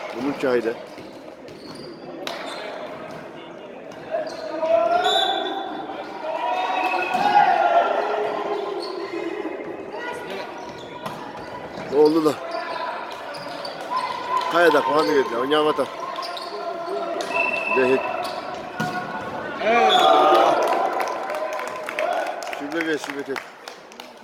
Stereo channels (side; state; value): both; identical; correlation 1.00